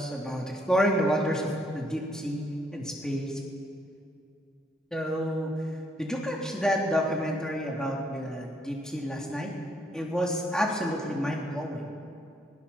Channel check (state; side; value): normal; both; correlation 0.70